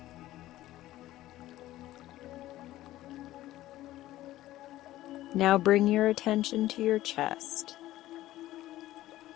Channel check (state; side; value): quieter; right; 15.3 dB